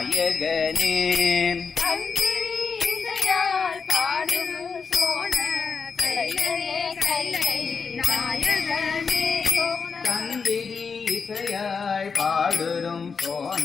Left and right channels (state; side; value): quieter; right; 5.5 dB